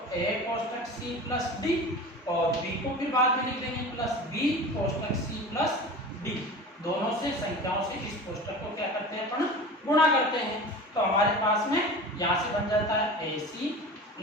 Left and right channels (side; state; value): both; normal; correlation 0.34